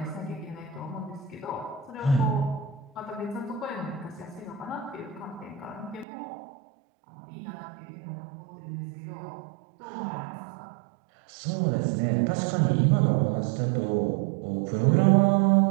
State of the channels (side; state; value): left; drops out; at 6.1 s